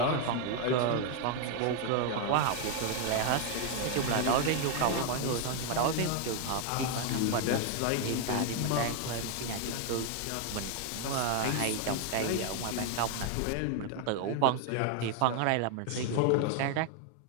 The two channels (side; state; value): both; different; correlation 0.00